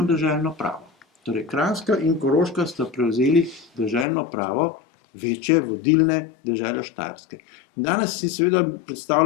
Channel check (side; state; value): right; drops out; at 4.0 s